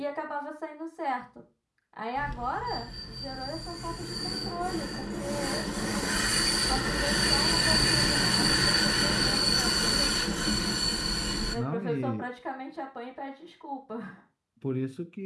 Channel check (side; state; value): both; identical; correlation 1.00